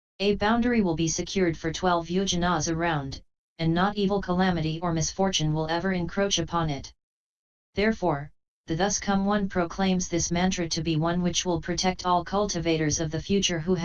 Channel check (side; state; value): both; identical; correlation 1.00